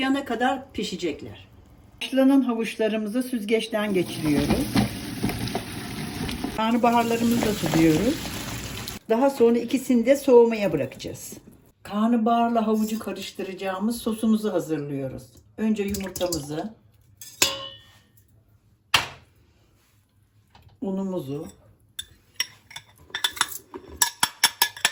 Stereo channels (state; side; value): identical; both; correlation 1.00